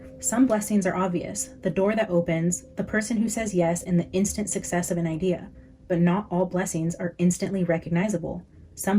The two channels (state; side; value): identical; both; correlation 1.00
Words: some blessings are obvious, the door that opens, the person who says yes, and the instant success of an idea. But not all blessings are instantly recognizable. Some